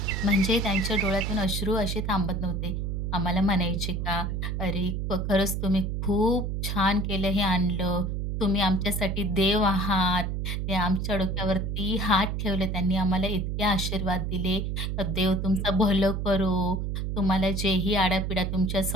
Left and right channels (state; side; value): noise; right; hum, 2 dB below the sound